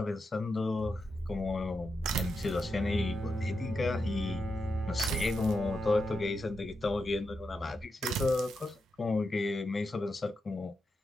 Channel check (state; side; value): normal; both; correlation 0.86